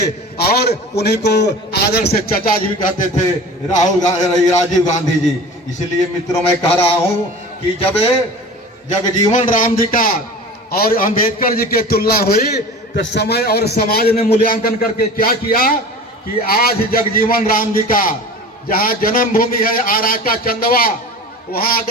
और उन्हीं को आदर से चचा जी भी कहते थे, राजीव गांधी जी। इसलिए मित्रों, मैं कह रहा हूं कि जब जगजीवन राम जी का और अंबेडकर जी की तुलना हुई तो समय और समाज ने मूल्यांकन करके क्या किया कि आज जगजीवन राम जी का जहां जन्मभूमि है आरा का चंदवा, वहां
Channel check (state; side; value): normal; both; correlation 0.37